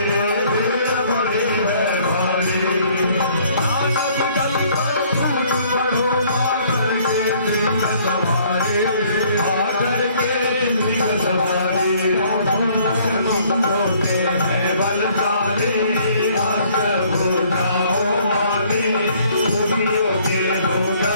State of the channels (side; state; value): both; inverted; correlation -0.60